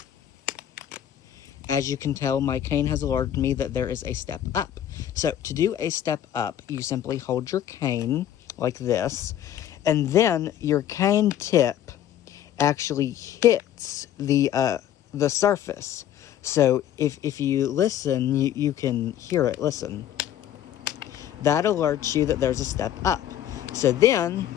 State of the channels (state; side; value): quieter; right; 11.0 dB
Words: As you can tell, my cane has alerted me that there is a step up. So to do a step up, you simply hold your cane like this, and then your cane tip actually hits the surface. So if you listen, you can hear it. Listen. That alerts you that there's a step up. So then